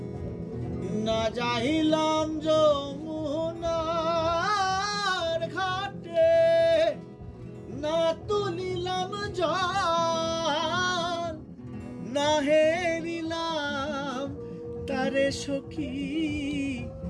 না যাইলাম যমুনার ঘাটে না তুলিলাম জল না হেরিলাম তারে সখী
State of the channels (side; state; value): both; identical; correlation 1.00